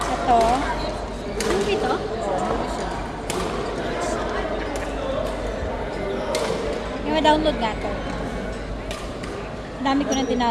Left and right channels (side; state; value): both; identical; correlation 1.00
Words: Ito. Movie to? Oo, siya. Yung ma-download nga to. Dami ko na